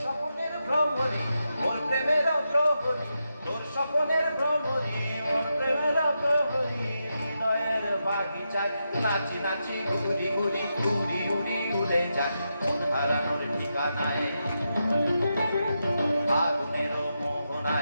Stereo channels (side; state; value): both; inverted; correlation -0.86